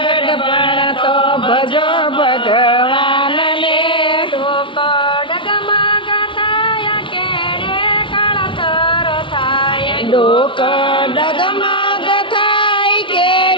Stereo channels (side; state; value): right; late; 0.25 ms